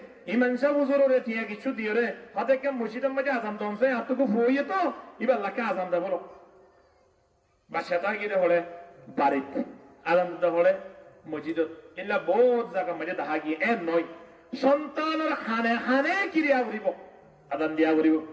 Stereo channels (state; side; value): identical; both; correlation 1.00